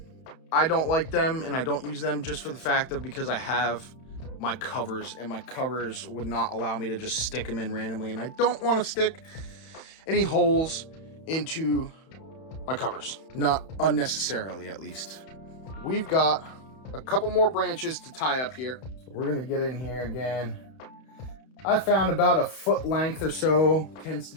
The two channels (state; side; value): late; right; 31 ms